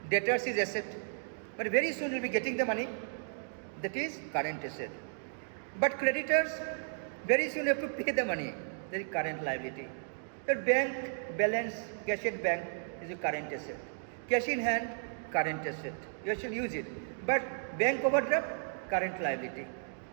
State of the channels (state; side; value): silent; left; digital silence